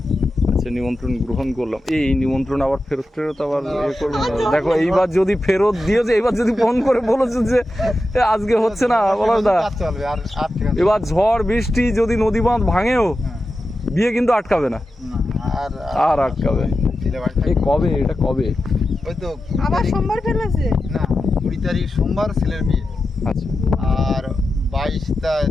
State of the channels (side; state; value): both; normal; correlation 0.91